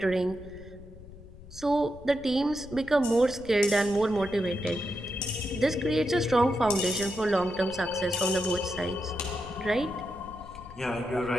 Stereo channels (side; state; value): left; noise; rumble, 17 dB below the sound